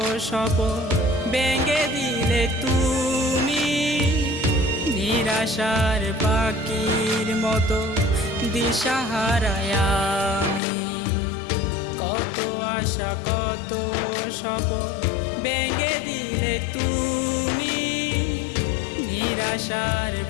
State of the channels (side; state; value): right; drops out; at 10.6 s